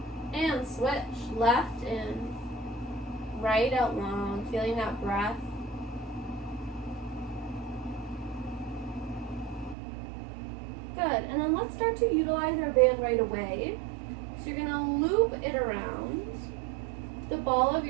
And switch. Left in. Right out long. Feeling that breath. Good. And then let's start to utilize our band right away. So you're going to loop it around the ball of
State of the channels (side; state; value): left; drops out; at 9.8 s